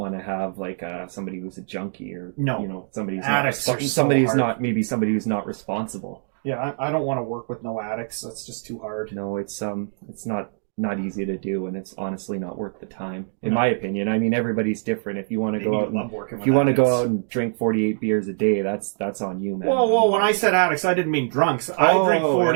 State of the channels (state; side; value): silent; left; 62 dB below the other